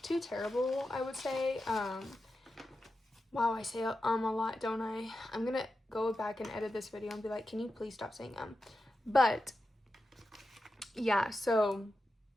I would say. Wow, I say a lot, don't I? I'm gonna go back and edit this video and be like, can you please stop saying But yeah, so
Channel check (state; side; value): normal; both; correlation 0.91